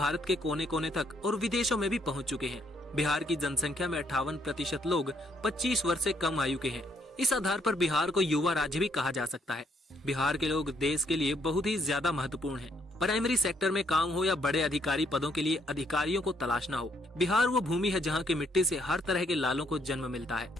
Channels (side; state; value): both; normal; correlation 0.70